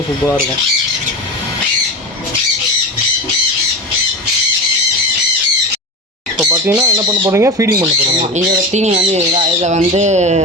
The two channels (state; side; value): normal; both; correlation 0.24